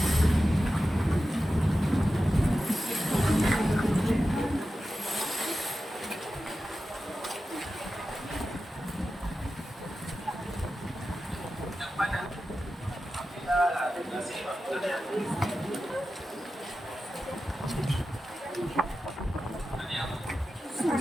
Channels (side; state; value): both; normal; correlation 0.93